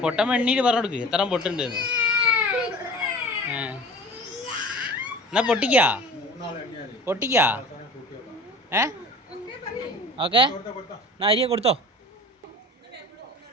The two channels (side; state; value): both; normal; correlation 0.40